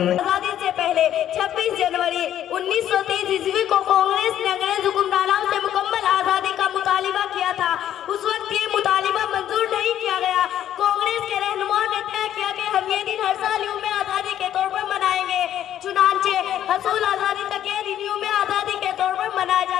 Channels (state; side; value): quieter; right; 11.1 dB